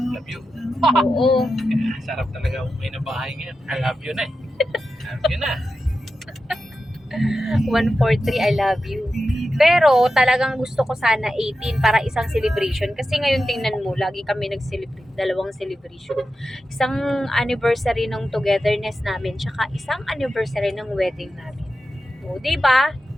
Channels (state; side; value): normal; both; correlation 0.91